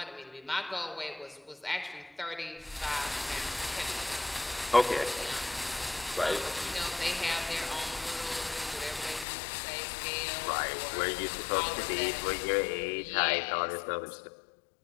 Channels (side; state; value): right; drops out; at 9.2 s